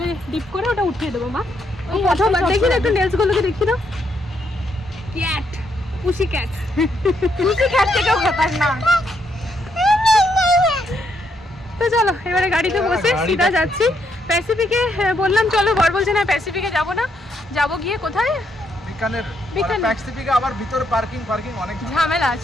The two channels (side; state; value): both; normal; correlation 0.76